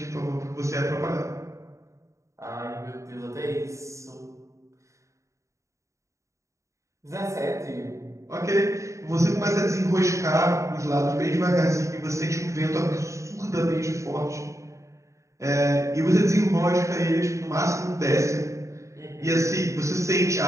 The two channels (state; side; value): late; left; 0.15 ms